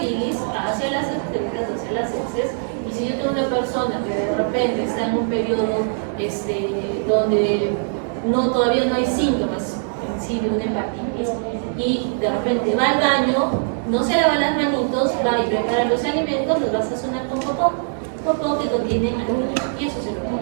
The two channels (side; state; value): left; silent; digital silence